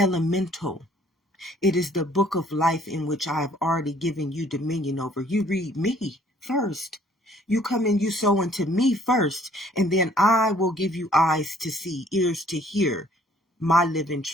It is the book of life in which I have already given you dominion over. You read me first. You come and you sow into me first, and then I will give you eyes to see, ears to hear my living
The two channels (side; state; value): both; normal; correlation 0.60